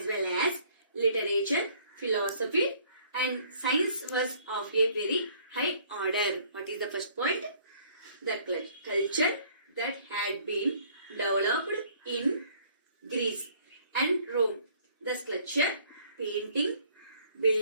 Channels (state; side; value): inverted; both; correlation -0.59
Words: well as literature, philosophy and science was of a very high order. What is the first point? The culture that had been developed in Greece and Rome. The sculpture, painting,